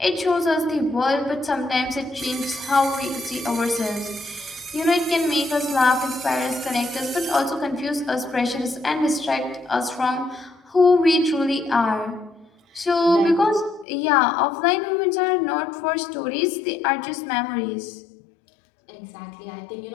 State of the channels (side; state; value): right; drops out; at 13.9 s